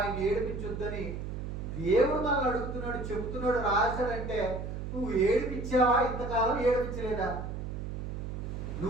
ఏడిపించొద్దని దేవుడు మనల్ని అడుగుతున్నాడు, చెబుతున్నాడు, రాశాడంటే నువ్వు ఏడిపించావా? ఇంతకాలం ఏడిపించలేదా?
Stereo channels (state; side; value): noise; right; hum, 6 dB below the sound